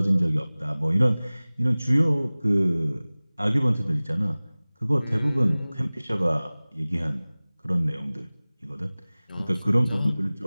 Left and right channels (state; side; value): inverted; both; correlation -0.99